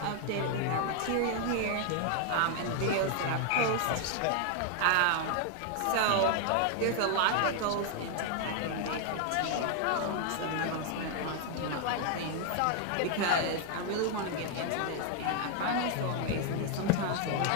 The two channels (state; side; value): different; both; correlation 0.00